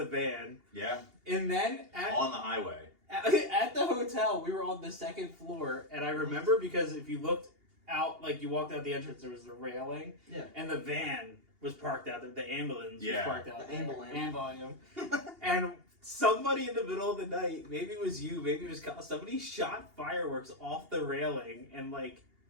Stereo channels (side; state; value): left; late; 2.8 ms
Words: van. Yeah. And then On the highway. at the hotel, we were on the second floor, and I remember because if you looked out, like you walked out the entrance, there was the railing, Yeah. and the van was parked out there. The ambulance Yeah. was parked out The there. ambulance. And somebody in the middle of the night, maybe it was you, maybe it was Kyle, somebody shot fireworks off the railing and like